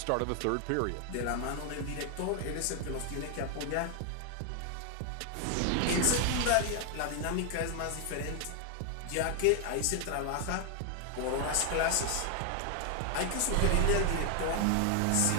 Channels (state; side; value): different; both; correlation 0.00